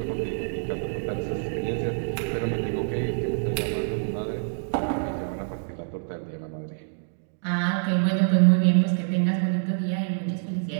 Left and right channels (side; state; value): left; silent; digital silence